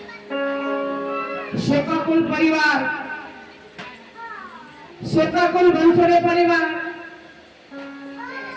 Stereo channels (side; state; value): both; identical; correlation 1.00